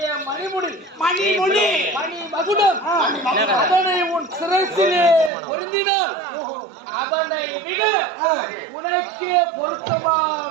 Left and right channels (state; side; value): drops out; left; at 5.3 s